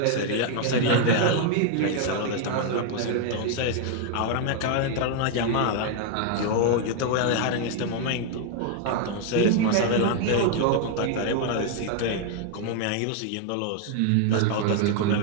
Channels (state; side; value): different; both; correlation 0.00